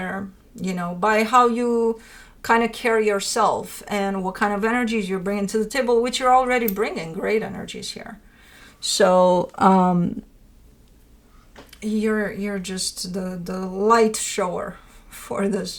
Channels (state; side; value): identical; both; correlation 1.00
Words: you know, by how you kind of carry yourself and what kind of energies you're bringing to the table, which you're already bringing great energies here. So you're just the light shower for